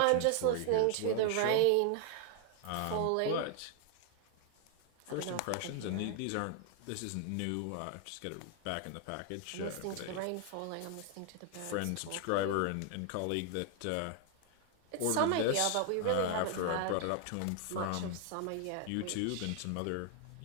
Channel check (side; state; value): both; different; correlation 0.00